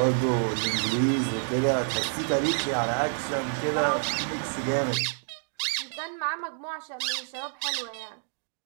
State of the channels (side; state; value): left; silent; digital silence